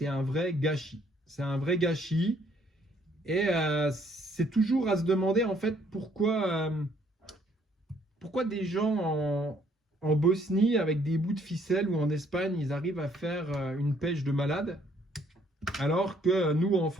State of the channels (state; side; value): normal; both; correlation 0.65